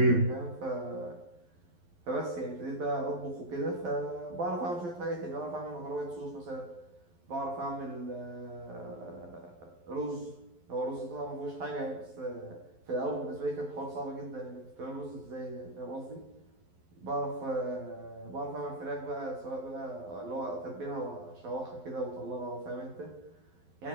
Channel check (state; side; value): late; left; 12 ms